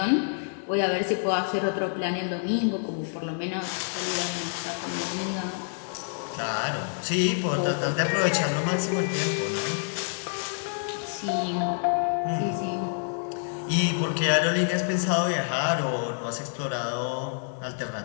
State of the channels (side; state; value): right; silent; digital silence